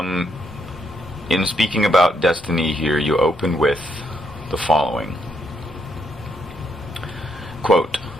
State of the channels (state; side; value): normal; both; correlation 0.76